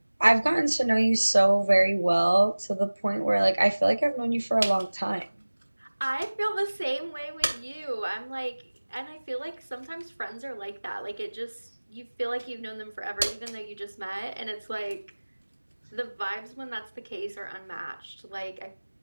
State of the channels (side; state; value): both; inverted; correlation -1.00